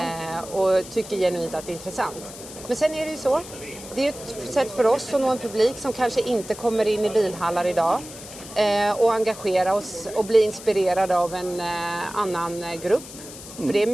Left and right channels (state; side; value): noise; left; hiss, 14 dB below the sound